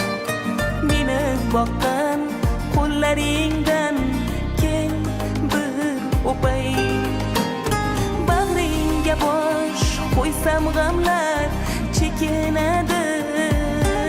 meni boqqan qo'llaringdan kel bir o'pay. Bag'ringga bosh qo'ysam g'amlar chekinadi,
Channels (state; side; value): identical; both; correlation 1.00